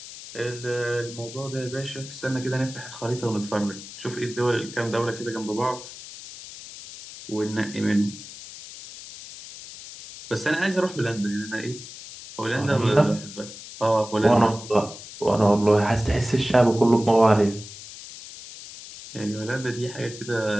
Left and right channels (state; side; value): noise; left; hiss, 14 dB below the sound